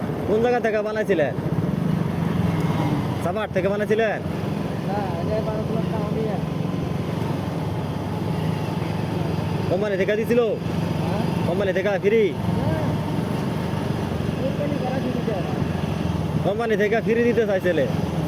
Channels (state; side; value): identical; both; correlation 1.00